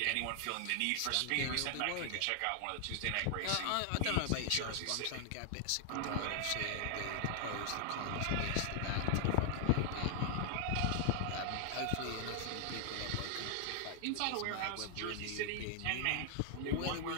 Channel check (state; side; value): different; both; correlation 0.00